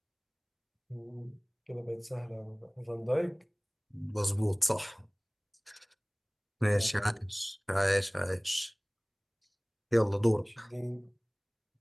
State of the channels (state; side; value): identical; both; correlation 1.00